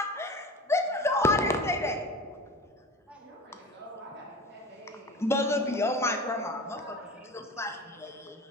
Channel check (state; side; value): normal; both; correlation 0.34